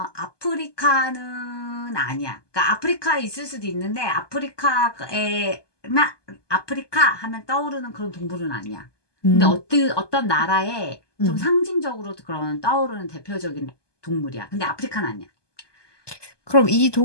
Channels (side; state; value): right; late; 1.2 ms